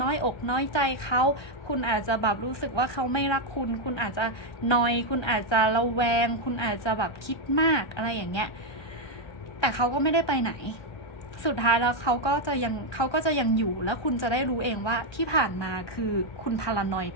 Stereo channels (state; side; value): late; right; 1.3 ms